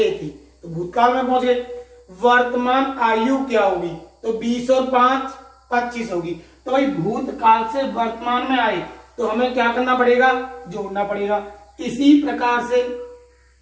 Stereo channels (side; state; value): both; identical; correlation 1.00